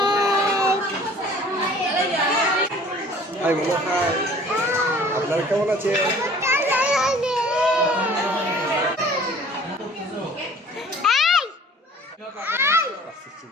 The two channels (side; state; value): both; normal; correlation 0.50